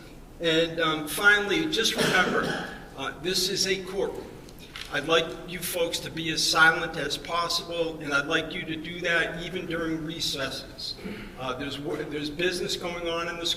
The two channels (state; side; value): identical; both; correlation 1.00